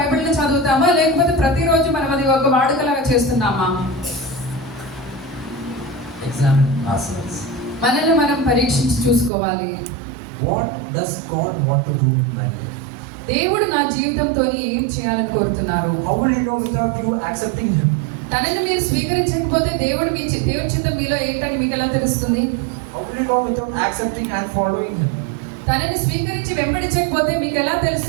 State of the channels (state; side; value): drops out; left; at 9.3 s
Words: చదువుతామా లేకపోతే ప్రతిరోజు మనం అది ఒక వాడుకలాగా చేస్తున్నామా? Examine ourselves. మనల్ని మనం పరీక్షించి చూసుకోవాలి. What does God want to do in my life? దేవుడు నా జీవితంతో ఏం చేయాలని కోరుతున్నారు? How will you know without you accepting Him? తనని మీరు స్వీకరించకపోతే దేవుడి చిత్తం మీలో ఏంటని మీకు ఎలా తెలుస్తుంది? How will you know without accepting and following Him? తనని స్వీకరించి వెంబడించకపోతే మీకు ఎలా